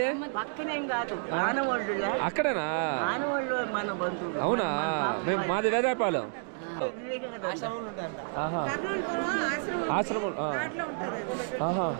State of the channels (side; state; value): left; silent; digital silence